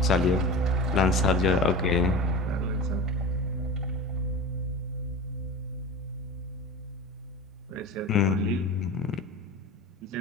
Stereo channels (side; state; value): both; normal; correlation 0.31